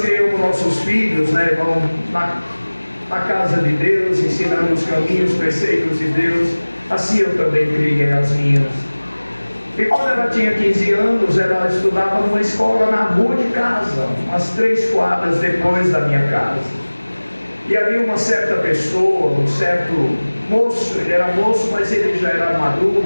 nossos filhos, né, irmão, na casa de Deus, ensinando os caminhos, os preceitos de Deus. Assim eu também criei as minhas. E quando ela tinha 15 anos, ela estudava numa escola na rua de casa, umas 3 quadras depois da minha casa. E havia uma certa pessoa, um certo moço, ele era moço, mas ele já era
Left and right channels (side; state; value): both; inverted; correlation -1.00